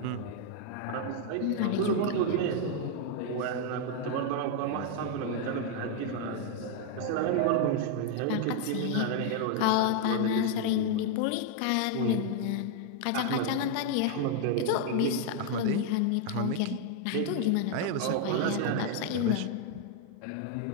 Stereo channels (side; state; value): both; different; correlation 0.00